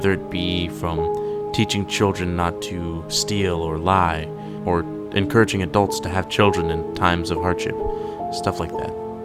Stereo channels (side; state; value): both; identical; correlation 1.00